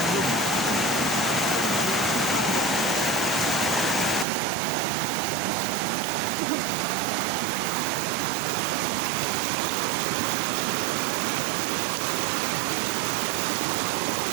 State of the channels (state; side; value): drops out; left; at 4.2 s